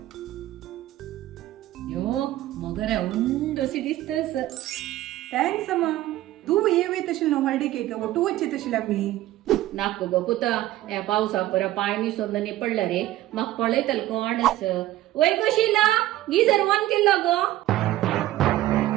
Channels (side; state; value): left; quieter; 15.2 dB